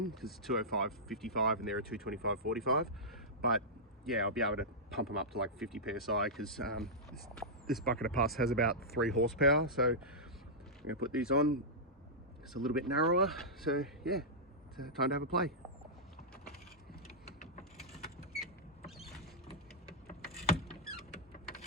because it's 205 55 and they're a 225 45. But yeah, I'll be able to pump them up to like 50 psi because this bucket of pus has about 3 horsepower. So I'm going to put these on. It's a little bit narrower, so yeah, it's time to have a play.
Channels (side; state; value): both; normal; correlation -0.12